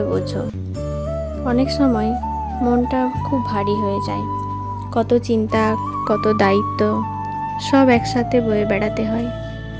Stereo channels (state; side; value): identical; both; correlation 1.00